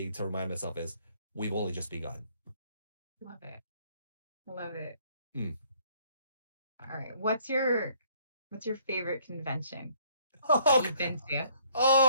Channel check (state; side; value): inverted; both; correlation -0.63